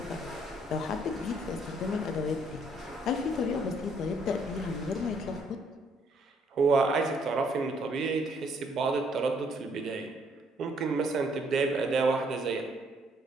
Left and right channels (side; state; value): both; normal; correlation 0.67